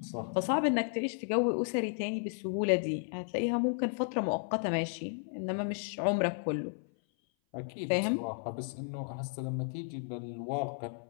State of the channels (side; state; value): right; silent; 55 dB below the other